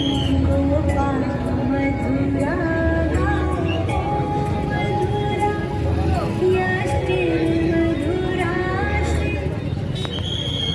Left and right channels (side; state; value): both; identical; correlation 1.00